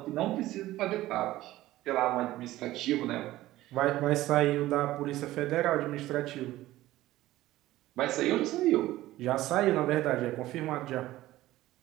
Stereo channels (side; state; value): left; quieter; 16.0 dB